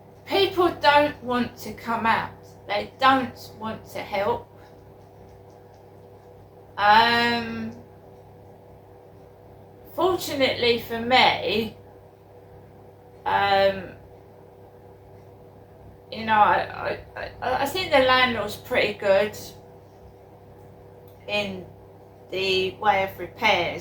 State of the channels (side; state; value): both; identical; correlation 1.00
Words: people don't want to come out. They don't want to help. Fortunately for me, you know, I think the landlord's pretty good in the way of